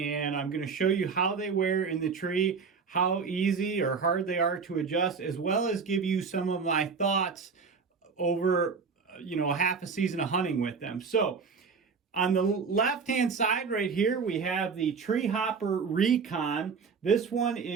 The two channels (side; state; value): left; quieter; 5.4 dB